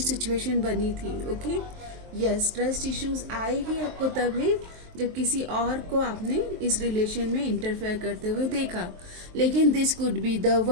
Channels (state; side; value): late; left; 23 ms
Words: सिचुएशन बनी थी, ओके। यस, ट्रस्ट इश्यूज आए ही आपको तब है जब किसी और को आपने इस रिलेशन में इंटरफेयर करते हुए देखा। लेकिन this could be the